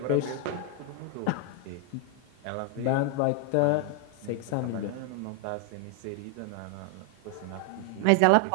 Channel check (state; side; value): different; both; correlation 0.00